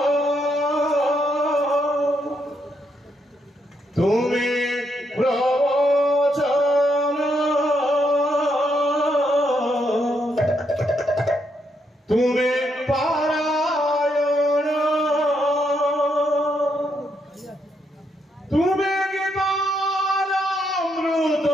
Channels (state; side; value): normal; both; correlation 0.77